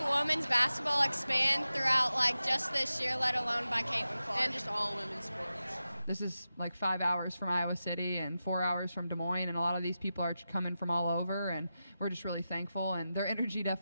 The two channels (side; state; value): both; inverted; correlation -0.92